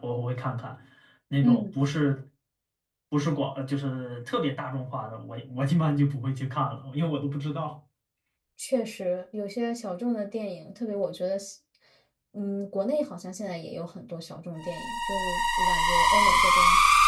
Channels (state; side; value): identical; both; correlation 1.00